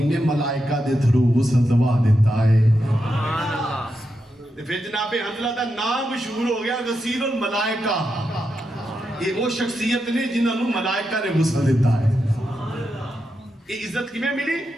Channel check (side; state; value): both; normal; correlation 0.86